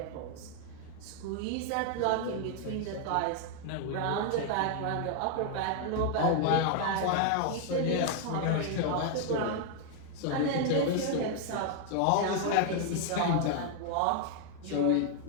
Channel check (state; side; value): different; both; correlation 0.00